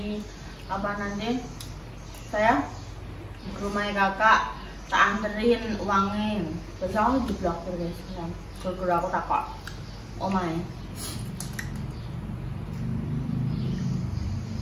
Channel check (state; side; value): identical; both; correlation 1.00